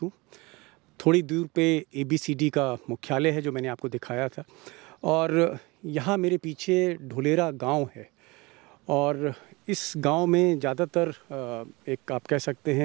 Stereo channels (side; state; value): left; quieter; 24.3 dB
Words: हूँ। थोड़ी दूर पे ABCD का मुख्यालय है जो मैंने आपको दिखाया था, और यहाँ मेरे पीछे ढुलेरा गांव है, और इस गांव में ज़्यादातर एक आप कह सकते